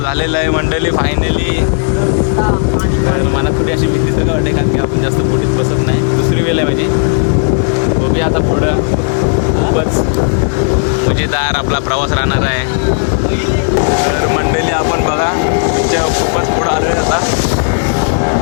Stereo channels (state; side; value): silent; right; 69 dB below the other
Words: झालेला आहे मंडळी फायनली. तर मला थोडी अशी भीती तर वाटते कारण की आपण जास्त बोटीत बसत नाही. दुसरी वेळ आहे माझी. बघूया आता पुढं खूपच मजेदार आपला प्रवास राहणार आहे. तर मंडळी आपण बघा खूपच पुढं आलो आहे आता.